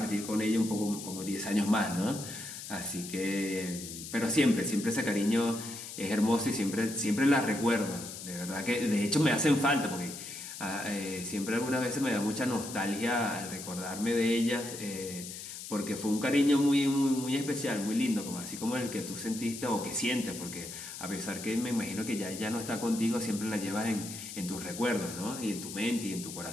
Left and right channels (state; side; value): noise; left; hiss, 10 dB below the sound